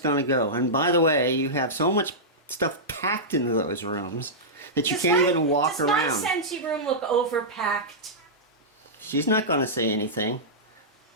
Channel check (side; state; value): both; normal; correlation -0.13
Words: to go. And by the way, you have so much stuff packed into those rooms that you can't even walk around. Does my Scentsy room look overpacked? She's not going to say anything.